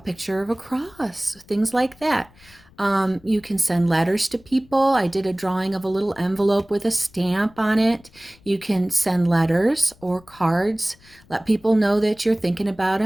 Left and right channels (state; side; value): noise; left; rumble, 27 dB below the sound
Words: of a cross, things like that. You can send letters to people. I did a drawing of a little envelope with a stamp on it. You can send letters or cards. Let people know that you're thinking about